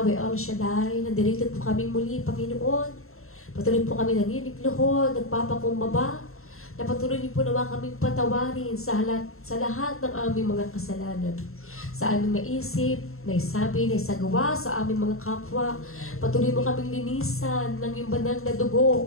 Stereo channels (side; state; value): right; late; 0.62 ms